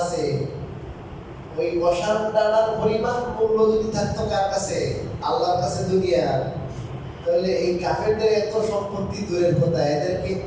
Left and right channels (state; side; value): identical; both; correlation 1.00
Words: ওই মশার দানার পরিমাণ মূল্য যদি থাকতো কার কাছে? আল্লাহর কাছে দুনিয়ার, তাহলে এই কাফেরদের এত সম্পত্তি দূরের কথা, এদেরকে